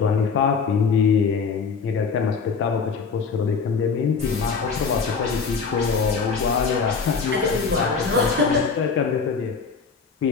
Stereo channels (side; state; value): right; quieter; 5.3 dB